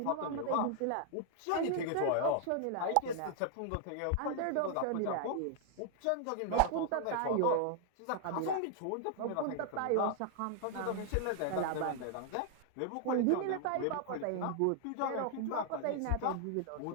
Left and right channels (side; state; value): both; different; correlation 0.00